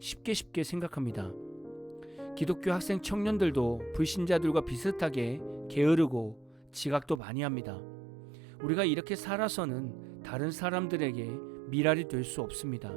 생각합니다. 기독교 학생 청년들도 불신자들과 비슷하게 게으르고 지각도 많이 합니다. 우리가 이렇게 살아서는 다른 사람들에게 미랄이 될 수 없습니다.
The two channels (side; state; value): left; drops out; at 7.2 s